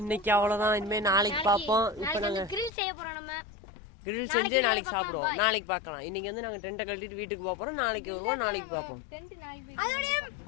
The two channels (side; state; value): right; drops out; at 2.7 s